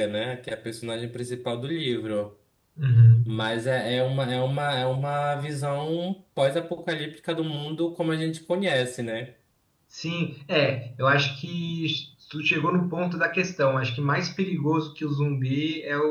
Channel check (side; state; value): both; identical; correlation 1.00